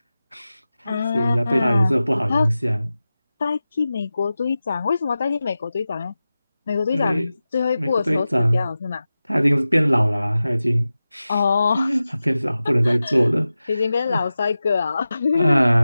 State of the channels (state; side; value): inverted; both; correlation -0.94